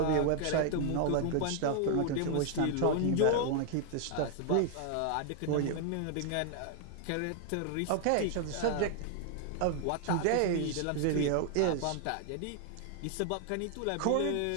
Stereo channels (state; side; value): different; both; correlation 0.00